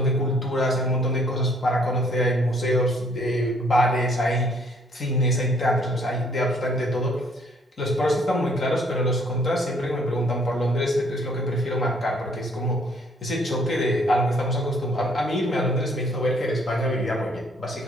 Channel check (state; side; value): normal; both; correlation 0.63